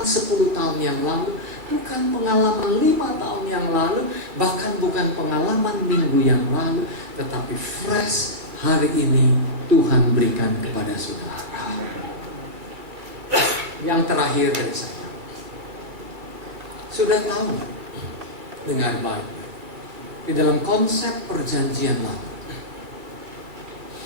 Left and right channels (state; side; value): late; left; 2.2 ms